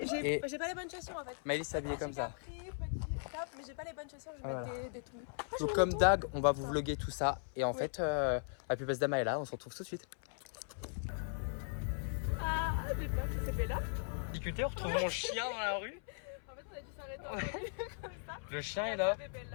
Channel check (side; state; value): right; silent; 52 dB below the other